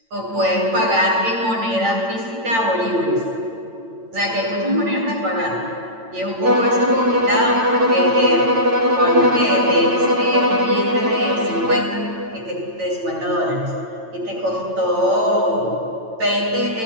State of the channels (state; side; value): late; left; 8.9 ms